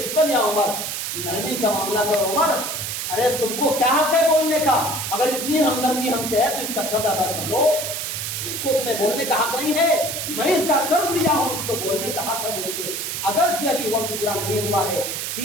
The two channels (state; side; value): noise; right; hiss, 4 dB below the sound